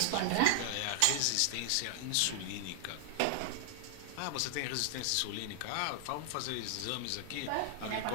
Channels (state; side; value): different; both; correlation 0.00